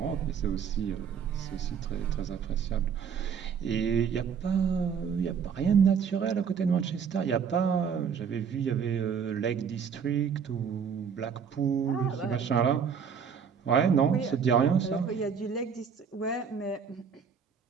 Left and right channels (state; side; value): quieter; left; 6.9 dB